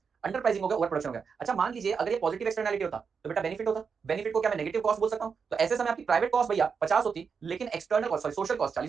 अंडर प्राइसिंग हो गया, ओवर प्रोडक्शन हो गया। अच्छा मान लीजिए अगर ये पॉजिटिव एक्सटर्नैलिटी होता तो बेटा बेनिफिट होता, बेनिफिट को क्या मैं नेगेटिव कॉस्ट बोल सकता हूं। तो ऐसे समय आपकी प्राइवेट कॉस्ट भैया 50 होती, लेकिन external cost sorry social cost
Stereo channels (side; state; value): left; quieter; 5.9 dB